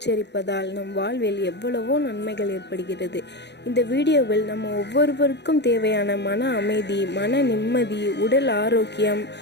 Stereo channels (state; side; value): late; right; 0.50 ms